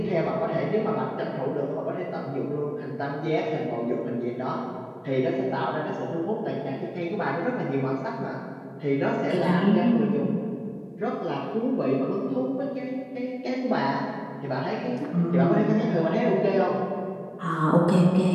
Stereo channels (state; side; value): identical; both; correlation 1.00